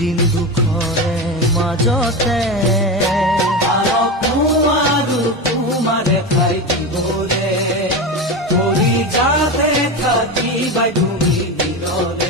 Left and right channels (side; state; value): both; normal; correlation 0.20